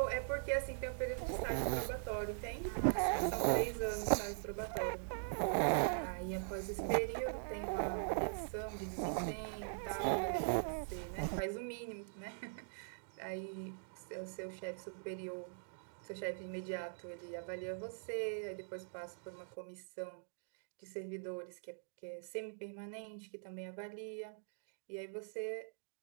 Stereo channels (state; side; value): silent; left; digital silence